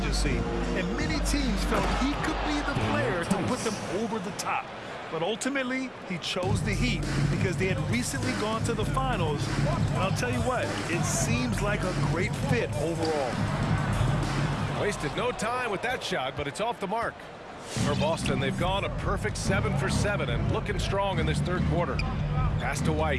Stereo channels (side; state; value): both; identical; correlation 1.00